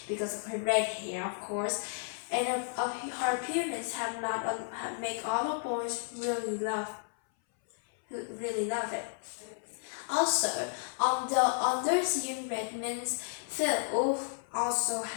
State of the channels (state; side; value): silent; right; 56 dB below the other